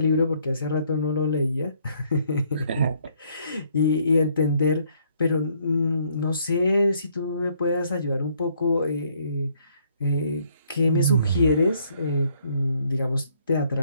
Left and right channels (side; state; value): both; inverted; correlation -0.67